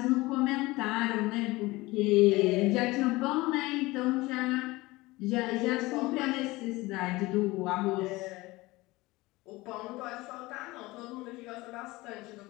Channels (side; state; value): right; quieter; 20.7 dB